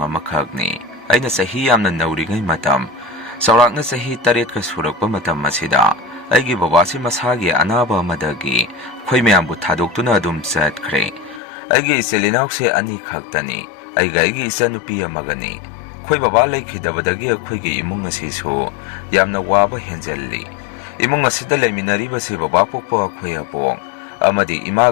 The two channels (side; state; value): right; drops out; at 11.4 s